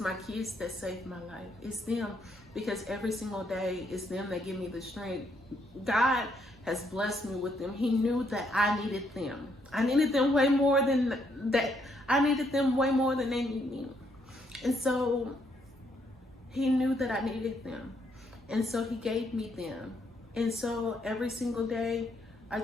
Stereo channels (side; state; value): both; normal; correlation 0.73